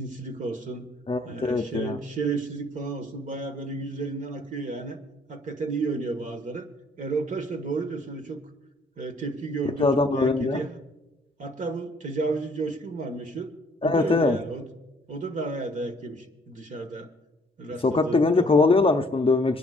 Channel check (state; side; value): normal; both; correlation 0.61